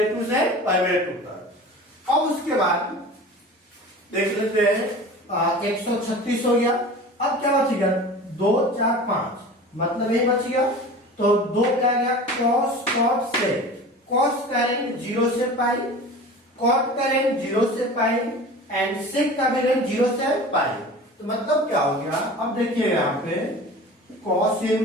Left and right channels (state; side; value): normal; both; correlation 0.37